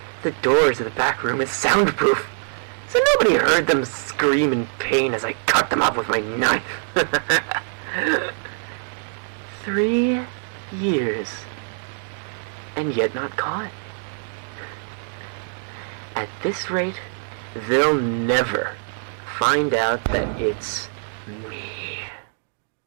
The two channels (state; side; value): silent; left; 62 dB below the other